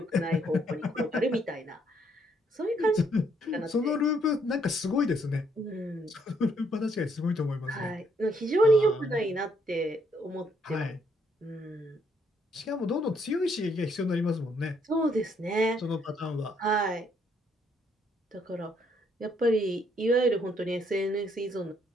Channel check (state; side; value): normal; both; correlation 0.70